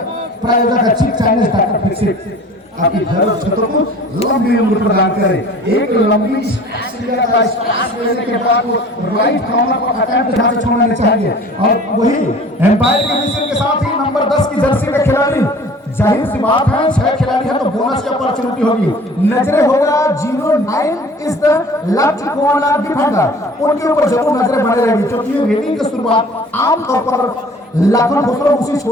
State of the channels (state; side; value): normal; both; correlation 0.47